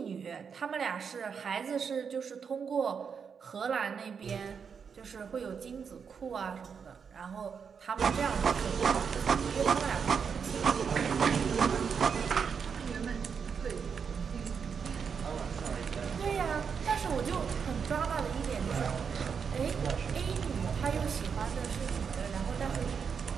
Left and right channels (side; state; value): left; quieter; 6.4 dB